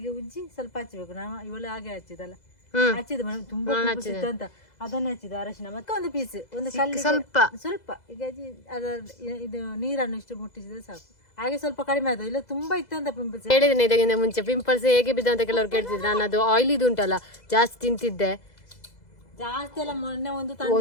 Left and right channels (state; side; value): late; right; 2.0 ms